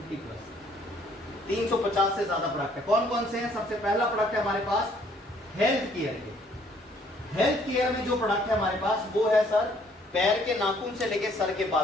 प्लस 350 से ज्यादा प्रोडक्ट है। कौन कौन से हैं? सबसे पहला प्रोडक्ट है हमारे पास हेल्थ केयर के। हेल्थ केयर में जो प्रोडक्ट है हमारे पास वो है सर, पैर के नाखून से लेके सर के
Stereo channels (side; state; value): both; normal; correlation 0.62